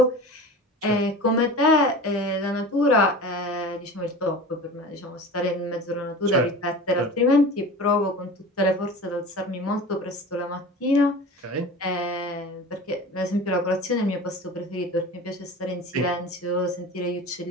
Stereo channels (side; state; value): both; normal; correlation 0.35